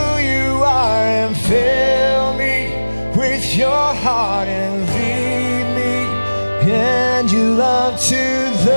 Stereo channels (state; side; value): inverted; both; correlation -1.00